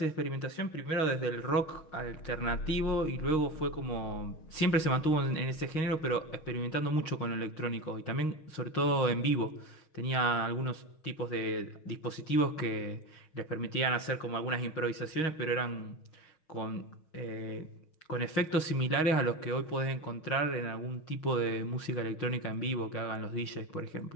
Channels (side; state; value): right; late; 6.4 ms